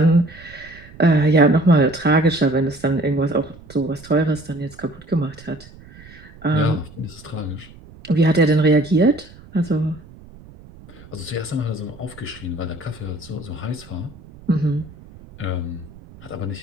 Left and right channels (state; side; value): noise; right; rumble, 21 dB below the sound